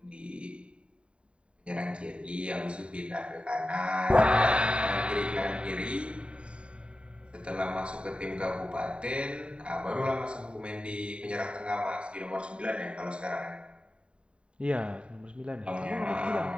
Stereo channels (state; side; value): late; left; 0.057 ms